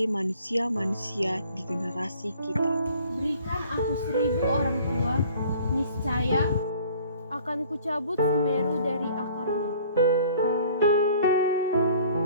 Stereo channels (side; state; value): both; inverted; correlation -0.52